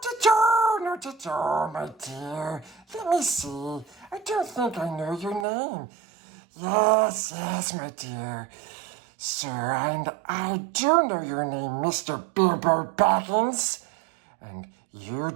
at all, my dear. Let me see. I don't think I know your name. Yes, my dear. Sir, and I do know your name, Mr. Bilbo Baggins. And you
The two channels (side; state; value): left; drops out; at 5.5 s